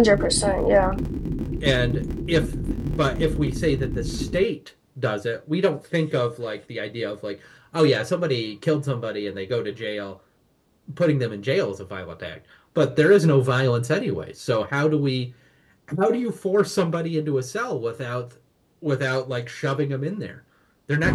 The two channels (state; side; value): identical; both; correlation 1.00